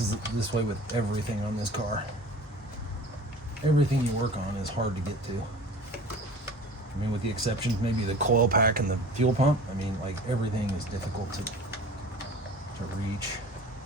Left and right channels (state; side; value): normal; both; correlation 0.41